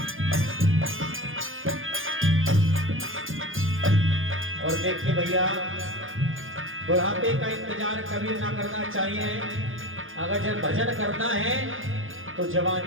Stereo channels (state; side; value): late; left; 0.59 ms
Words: और देखिए भैया, बुढ़ापे का इंतजार कभी ना करना चाहिए। अगर जब भजन करना है तो